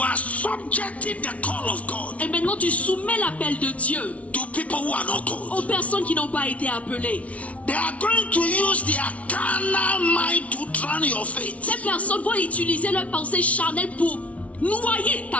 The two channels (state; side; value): late; right; 0.066 ms